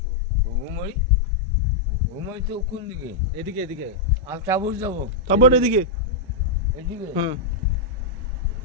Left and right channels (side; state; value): right; quieter; 3.1 dB